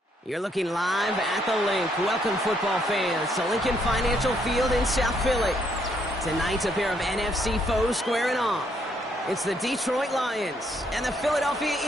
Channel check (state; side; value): normal; both; correlation 0.71